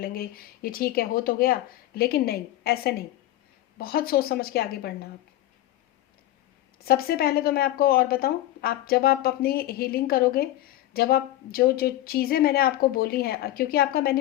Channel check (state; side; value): quieter; right; 14.6 dB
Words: ये ठीक है, हो तो गया। लेकिन नहीं, ऐसे नहीं, बहुत सोच समझ के आगे बढ़ना आप। सबसे पहले तो मैं आपको और बताऊं, आप जब आप अपनी हीलिंग करोगे, जब आप जो जो चीज़ें मैंने आपको बोली हैं, क्योंकि आपका